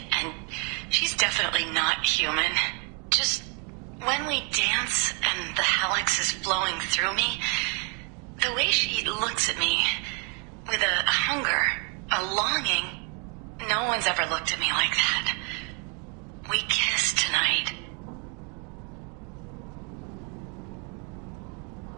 and she's definitely not human. Just when we dance and the Helix is flowing through me, the way she looks at me with a hunger, a longing, no one's ever looked at me like that. We kissed tonight.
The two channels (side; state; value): left; quieter; 35.7 dB